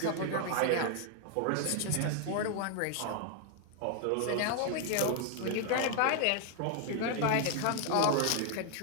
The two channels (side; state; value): both; different; correlation 0.00